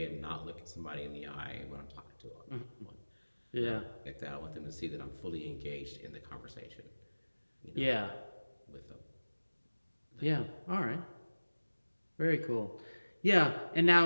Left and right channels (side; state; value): both; inverted; correlation -1.00